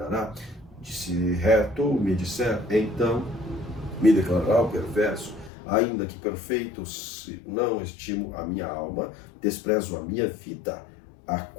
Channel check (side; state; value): right; drops out; at 5.5 s